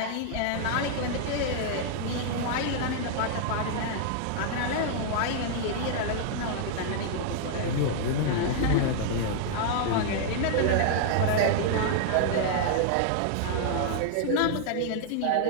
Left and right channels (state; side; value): different; both; correlation -0.01